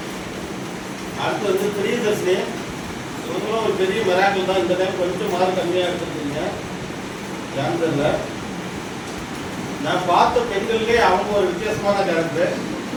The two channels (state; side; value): identical; both; correlation 1.00